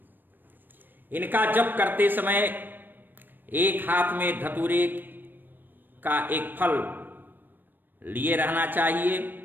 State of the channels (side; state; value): left; late; 0.092 ms